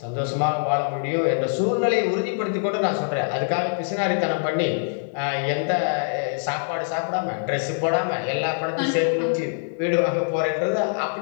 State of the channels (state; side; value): silent; right; 63 dB below the other